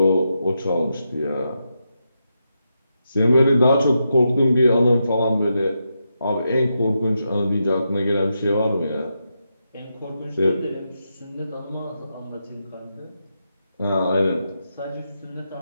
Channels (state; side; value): inverted; both; correlation -0.85